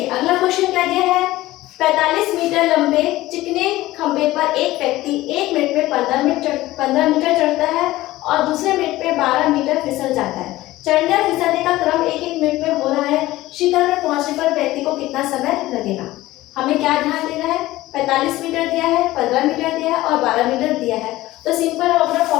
अगला क्वेश्चन क्या दिया है, 45 मीटर लंबे चिकने खंभे पर एक व्यक्ति 1 मिनट में 15 मीटर चढ़ता है और दूसरे मिनट में 12 मीटर फिसल जाता है। चढ़ने और फिसलने का क्रम 1-1 मिनट में हो रहा है। शिखर में पहुंचने पर व्यक्ति को कितना समय लगेगा। हमें क्या ध्यान देना है, 45 मीटर दिया है, 15 मीटर दिया है और 12 मीटर दिया है। तो सिंपल हम अपना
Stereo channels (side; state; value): right; quieter; 17.1 dB